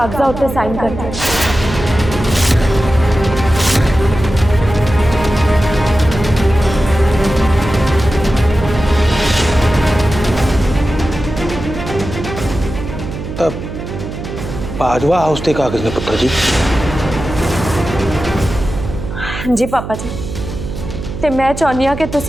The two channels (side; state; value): right; noise; hum, 8 dB below the sound